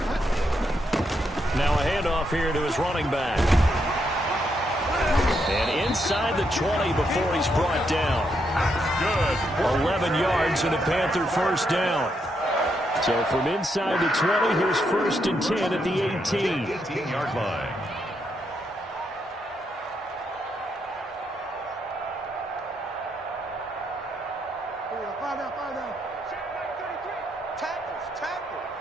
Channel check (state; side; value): normal; both; correlation 0.79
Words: Now a handoff here to his running back. And inside the 20 before he's brought down. Good. 11 yards and a Panther 1st down. So from inside the 20, here's 1st and 10 at the 18. 18-yard line.